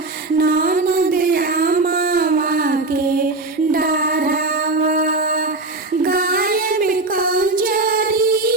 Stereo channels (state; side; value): quieter; left; 3.1 dB